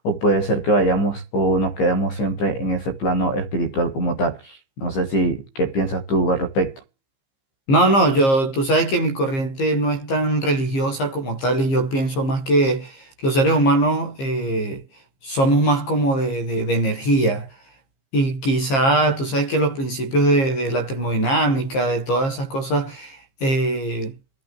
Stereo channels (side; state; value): right; late; 15 ms